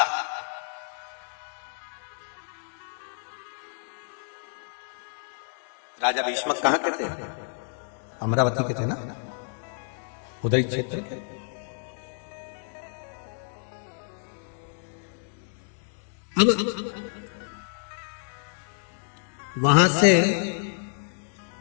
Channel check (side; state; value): right; silent; digital silence